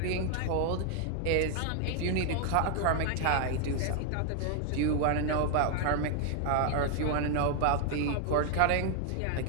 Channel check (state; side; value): different; both; correlation 0.00